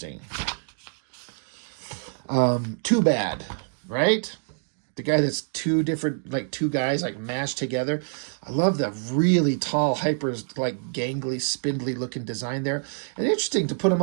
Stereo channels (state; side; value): silent; left; digital silence